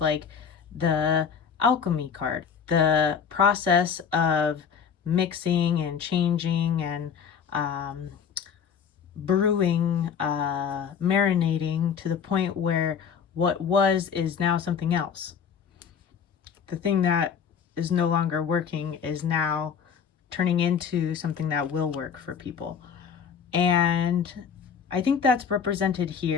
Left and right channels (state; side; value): quieter; right; 7.0 dB